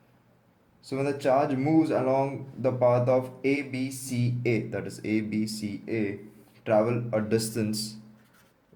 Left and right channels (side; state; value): both; identical; correlation 1.00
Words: So when the charge moves along the path of ABCA, that is ABCA, travel a distance